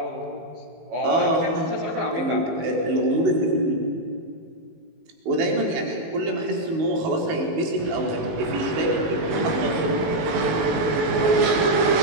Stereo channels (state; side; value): late; left; 18 ms